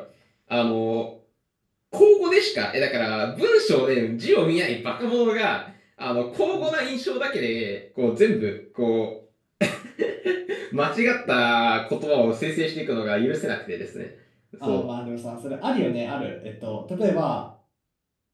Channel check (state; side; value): identical; both; correlation 1.00